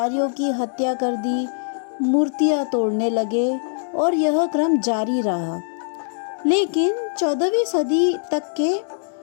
की हत्या कर दी, मूर्तियां तोड़ने लगे और यह क्रम जारी रहा। लेकिन 14वीं सदी तक के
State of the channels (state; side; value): silent; right; digital silence